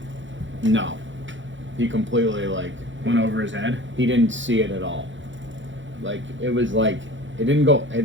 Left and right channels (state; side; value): late; left; 0.55 ms